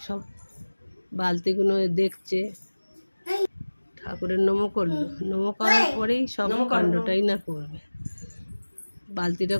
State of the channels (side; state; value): both; inverted; correlation -1.00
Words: সব বালতিগুলো দেখছে। ঠাকুরের নমো করলো, নমো করার পরেই সব কাণ্ডটাই না করবে। বালতিটা